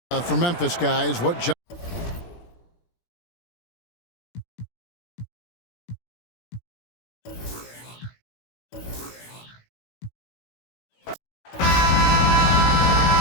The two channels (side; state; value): right; late; 17 ms